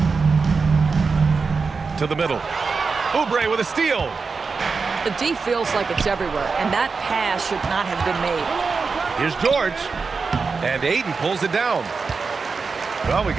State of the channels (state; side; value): quieter; left; 4.8 dB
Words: To the middle. Oubre with a steal. The D feels like it's everywhere, and that pass should not have been made. Here's George. And Ayton pulls it down. Well, we